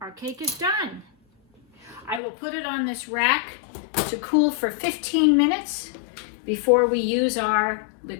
cake is done. I will put it on this rack to cool for 15 minutes before we use our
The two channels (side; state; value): right; drops out; at 2.2 s